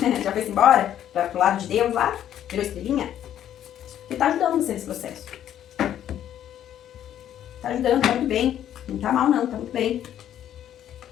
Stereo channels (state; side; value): quieter; right; 10.8 dB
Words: embora pro lado de Deus lá, virou estrelinha, que tá ajudando você nesse processo. Tá ajudando, tá muito bem. Não tá mal não, tá muito bem.